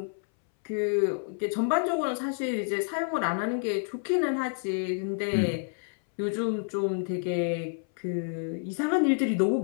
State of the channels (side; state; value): right; silent; 59 dB below the other